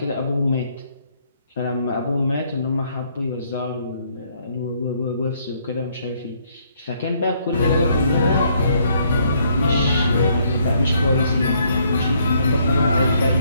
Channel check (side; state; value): both; inverted; correlation -0.68